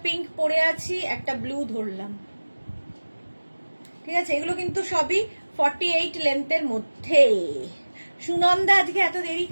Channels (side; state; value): both; inverted; correlation -1.00